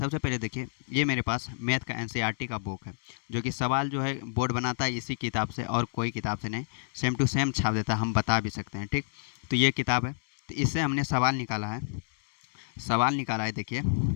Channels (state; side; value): silent; right; digital silence